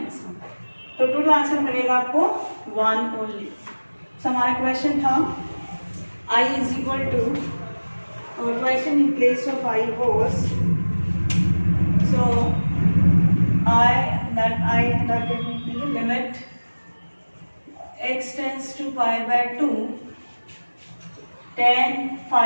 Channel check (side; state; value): both; inverted; correlation -1.00